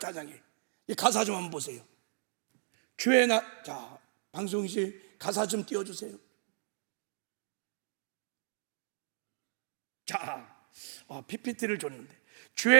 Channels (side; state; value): left; silent; digital silence